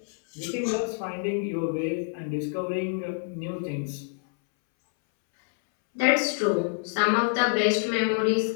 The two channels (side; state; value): right; silent; 60 dB below the other